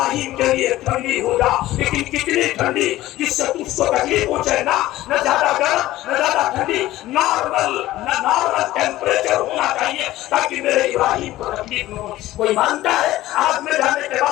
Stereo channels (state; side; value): quieter; right; 15.8 dB